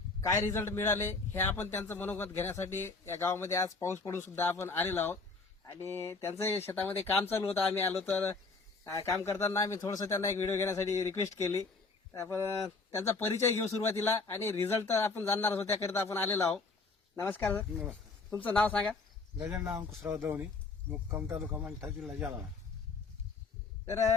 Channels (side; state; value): right; quieter; 4.0 dB